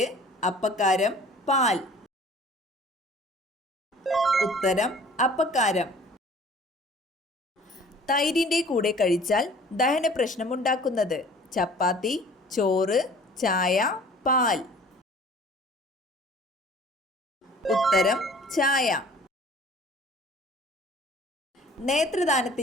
അപ്പക്കാരം, പാൽ. ഉത്തരം അപ്പക്കാരം. തൈരിൻ്റെ കൂടെ കഴിച്ചാൽ ദഹന പ്രശ്നമുണ്ടാക്കുന്നത് ചപ്പാത്തി, ചോറ്, ചായ, പാൽ. ഉത്തരം ചായ.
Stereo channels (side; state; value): both; normal; correlation 0.49